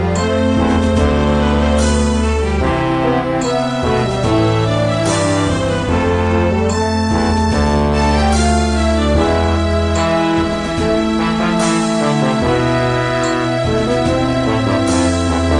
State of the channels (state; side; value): identical; both; correlation 1.00